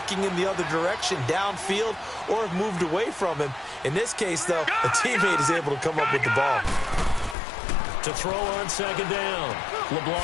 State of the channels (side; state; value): right; drops out; at 7.4 s